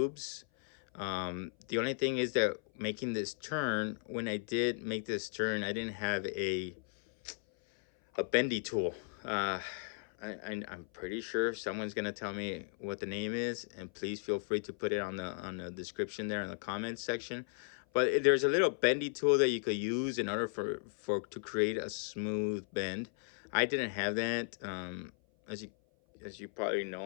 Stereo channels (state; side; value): silent; right; 54 dB below the other